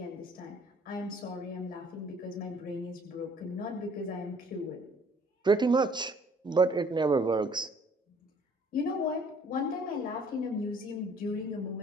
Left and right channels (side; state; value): both; normal; correlation 0.57